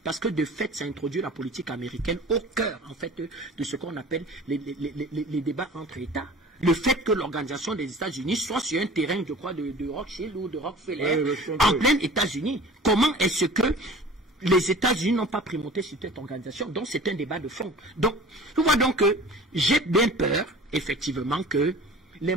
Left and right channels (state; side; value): normal; both; correlation 0.42